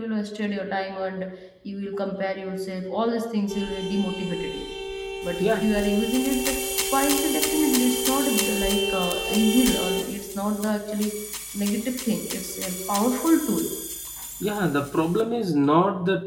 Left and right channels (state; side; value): identical; both; correlation 1.00